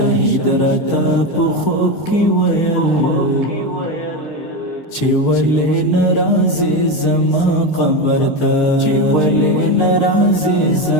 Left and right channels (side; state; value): right; late; 6.6 ms